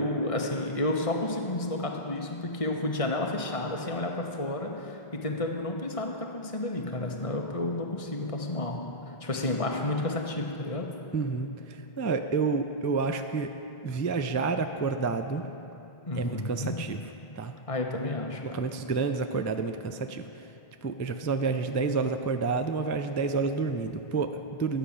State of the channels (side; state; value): right; late; 1.6 ms